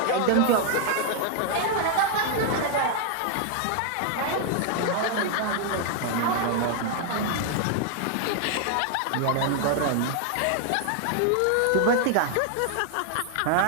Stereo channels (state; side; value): different; both; correlation 0.00